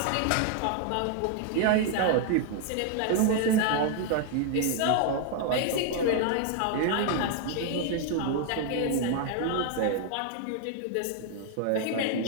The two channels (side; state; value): both; different; correlation 0.00